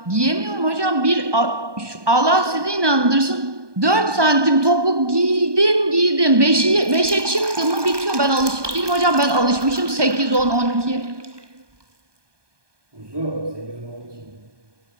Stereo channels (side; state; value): left; late; 1.2 ms